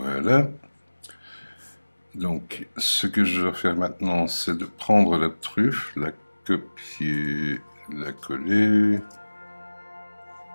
Donc, ce que je dois faire maintenant, c'est de prendre la truffe, la copier, la coller,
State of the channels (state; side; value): inverted; both; correlation -1.00